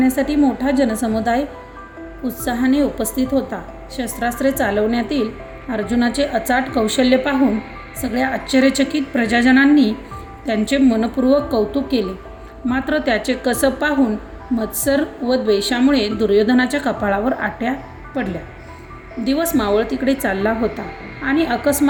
मोठा जनसमुदाय उत्साहाने उपस्थित होता. शस्त्रास्त्रे चालवण्यातील अर्जुनाचे अचाट कौशल्य पाहून सगळ्या आश्चर्यचकित प्रजाजनांनी त्यांचे मनपूर्वक कौतुक केले. मात्र त्याचे कसब पाहून मत्सर व द्वेषामुळे दुर्योधनाच्या कपाळावर आट्या पडल्या. दिवस मावळतीकडे चालला होता आणि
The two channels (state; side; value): identical; both; correlation 1.00